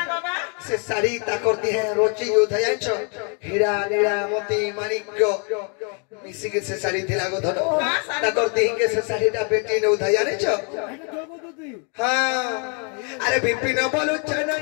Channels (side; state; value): right; quieter; 38.0 dB